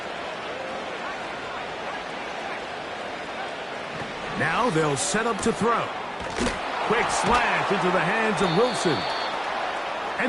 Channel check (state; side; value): identical; both; correlation 1.00